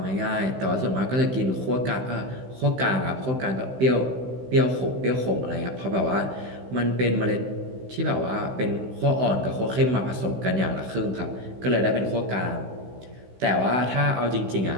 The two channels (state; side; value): late; left; 16 ms